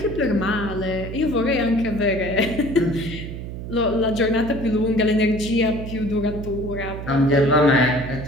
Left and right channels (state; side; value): noise; right; hum, 8 dB below the sound